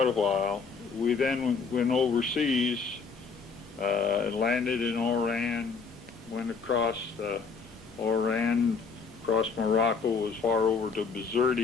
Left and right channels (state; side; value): quieter; right; 5.2 dB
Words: a while, we then went overseas, landed in Oran, went across Oran, across Morocco, as far over to